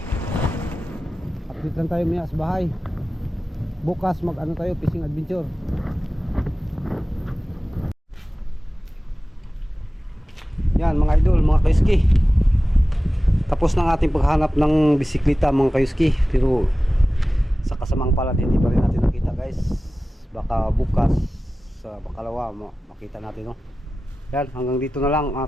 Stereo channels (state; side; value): normal; both; correlation 0.96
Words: Update lang tayo maya sa bahay. Bukas mag ano tayo, fishing adventure. Yan mga idol, mga kayuski, tapos ng ating paghanap ng bisikleta mga kayuski. Pero sa kasamang palad hindi pa rin natin nakita guys. Baka bukas sa bakalawa makita natin, no? Yan, hanggang dito na lang at